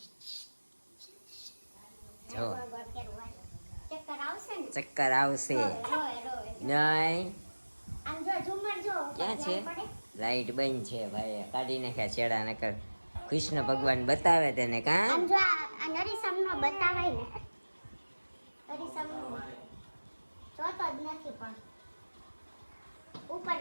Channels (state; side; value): inverted; both; correlation -1.00